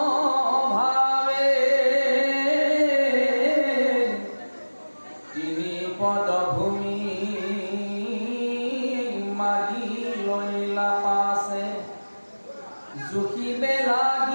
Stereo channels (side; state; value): both; inverted; correlation -1.00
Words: ভাৱে তিনি পদ ভূমি মাগি লৈলা পাছে জুখিবে